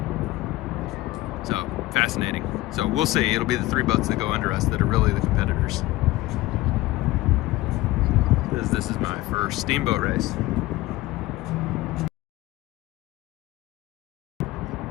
So, fascinating. So we'll see. It'll be the three boats that go under us that are really the competitors. This is my first steamboat race.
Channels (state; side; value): quieter; right; 18.1 dB